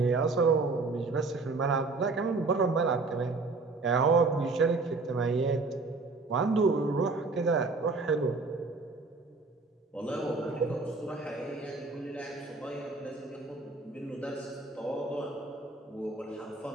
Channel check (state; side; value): quieter; left; 3.8 dB